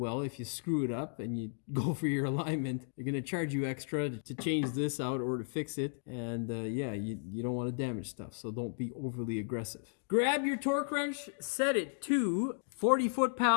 if you screw it up and you go for your alignment, they're going to charge you extra to change this out or to fix it. And, yeah, you don't want to damage stuff, so don't be overly aggressive. Grab your torque wrench, set it to 40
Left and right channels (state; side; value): silent; right; digital silence